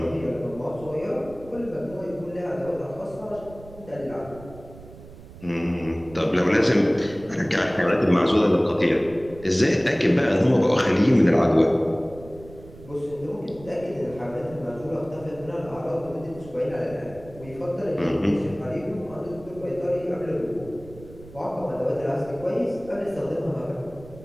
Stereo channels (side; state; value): right; noise; rumble, 18 dB below the sound